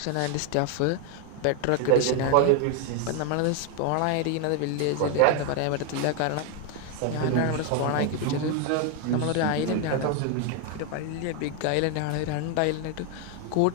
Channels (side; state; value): both; different; correlation 0.00